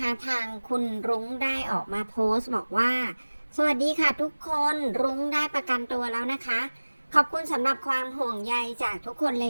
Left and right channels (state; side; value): inverted; both; correlation -1.00